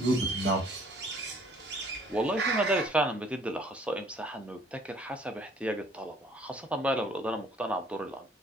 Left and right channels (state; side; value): normal; both; correlation 0.58